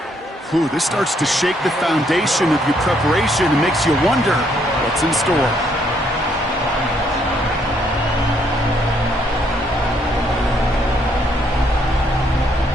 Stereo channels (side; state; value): both; normal; correlation 0.70